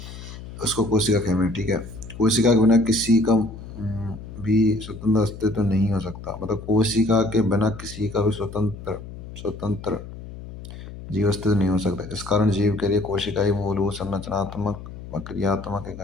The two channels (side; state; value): left; noise; hum, 13 dB below the sound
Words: उसको कोशिका कहते हैं। ठीक है, कोशिका के बिना किसी का भी स्वतंत्र अस्तित्व नहीं हो सकता। मतलब कोशिका के बिना किसी का भी स्वतंत्र स्वतंत्र जीव अस्तित्व नहीं हो सकता। इस कारण जीव के लिए कोशिका ही मूलभूत संरचनात्मक व क्रियात्मक